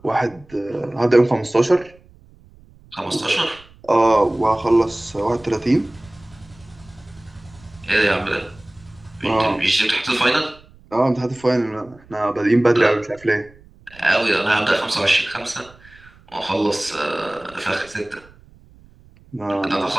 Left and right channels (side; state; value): right; noise; rumble, 26 dB below the sound